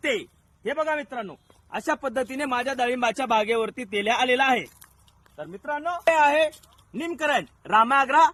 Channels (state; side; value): identical; both; correlation 1.00